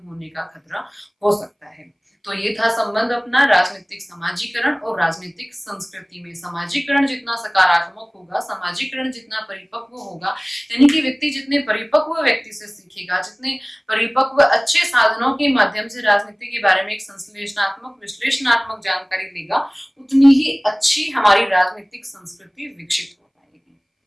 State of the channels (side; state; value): both; identical; correlation 1.00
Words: होने का खतरा हो सकता है। तो ये था संबंध अपना राजनीतिक समाजीकरण और राजनीतिक संस्कृति में। समाजीकरण जितना सकारात्मक होगा, समाजीकरण जितना परिपक्व होगा, यानी कि व्यक्ति जितने परिपक्व व्यक्ति से सीखेगा, जितने परिपक्व अच्छे साधनों के माध्यम से राजनीति के बारे में एक संश्लेषणात्मक, विश्लेषणात्मक जानकारी लेगा, उतनी ही अच्छी हमारी राजनीतिक संस्कृति विकसित हो पाएगी।